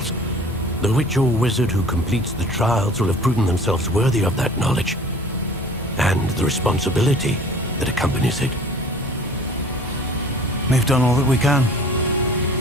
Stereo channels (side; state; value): both; normal; correlation 0.47